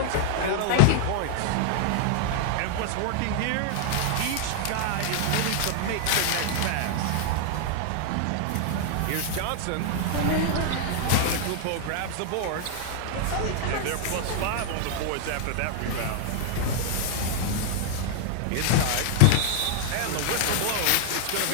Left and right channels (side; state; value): both; different; correlation -0.01